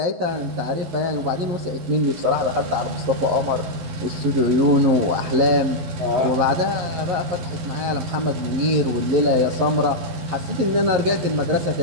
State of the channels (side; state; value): left; late; 12 ms